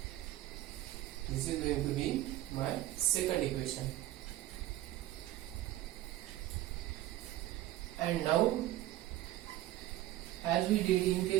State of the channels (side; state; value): left; quieter; 15.2 dB